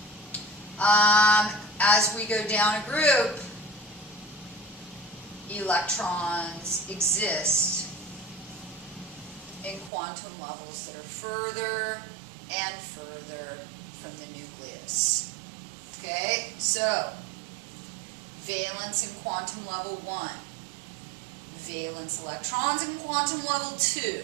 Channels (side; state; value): left; drops out; at 9.9 s